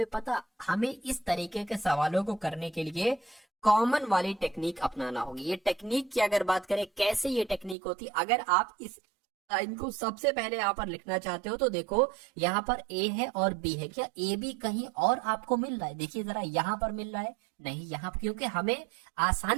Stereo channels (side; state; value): left; drops out; at 7.8 s